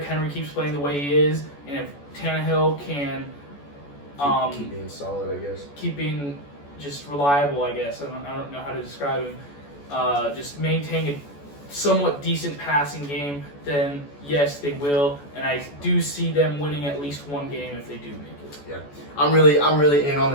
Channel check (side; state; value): right; late; 14 ms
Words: Henry keeps playing the way he is, and if Tannehill can keep being solid, I guess. Keep being just reliable, I guess. I don't know how to describe him. Just maintain a somewhat decent passing game, then yes, they will. And I do see them winning at least one game if they do make it. Yeah, I'm really in on